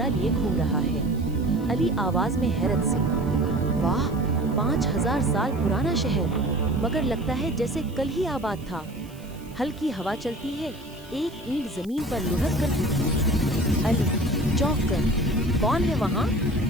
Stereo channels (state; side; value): noise; right; hiss, 24 dB below the sound